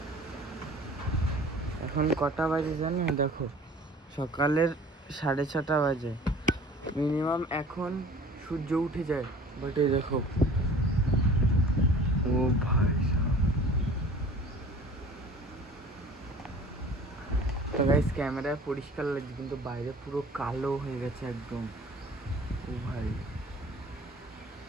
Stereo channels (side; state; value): both; normal; correlation 0.46